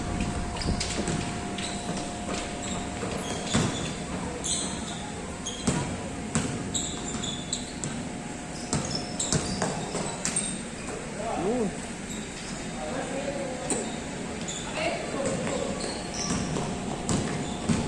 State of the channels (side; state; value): both; identical; correlation 1.00